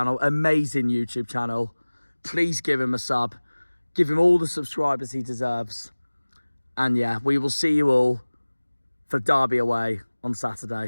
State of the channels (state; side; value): inverted; both; correlation -1.00